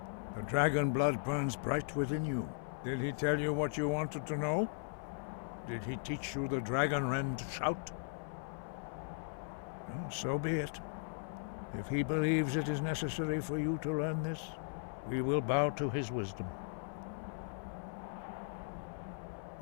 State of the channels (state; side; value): silent; right; 53 dB below the other